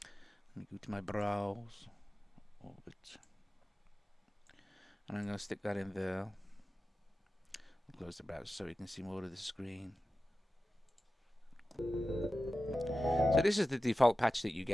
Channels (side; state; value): both; normal; correlation 0.94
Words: Let me go to my browse, Orbit, and I'm going to stick that in there. I'll close the browser so you can see more of the screen. So this is the default patch that you